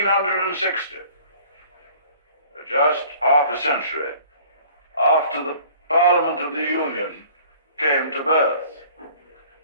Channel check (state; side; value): inverted; both; correlation -0.51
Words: just half a century after the Parliament of the Union came to birth.